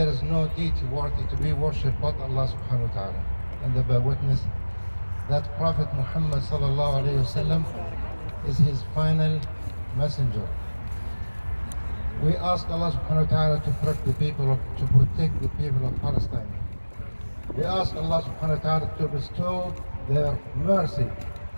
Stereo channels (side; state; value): both; inverted; correlation -1.00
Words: is no deity worthy to be worshipped but Allah subhanahu wa ta'ala. And I bear witness that Prophet Muhammad sallallahu alayhi wa sallam is his final messenger. We ask Allah subhanahu wa ta'ala to protect the people of Palestine. We ask Allah subhanahu wa ta'ala to bestow their mercy